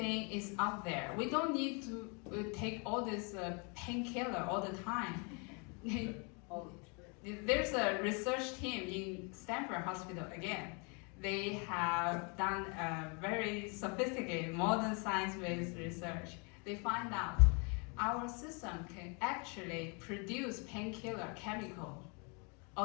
is out there. We don't need to take all this painkiller all the time. There's a research team in Stanford Hospital again. They have done a very sophisticated modern science-based research. They find out our system can actually produce painkiller chemical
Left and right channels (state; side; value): quieter; right; 33.9 dB